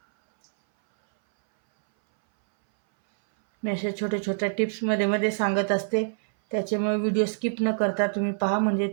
मी अशा छोट्या छोट्या टिप्स मध्ये मध्ये सांगत असते, त्याच्यामुळे व्हिडिओ स्किप न करता तुम्ही पहा, म्हणजे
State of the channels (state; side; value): silent; left; 60 dB below the other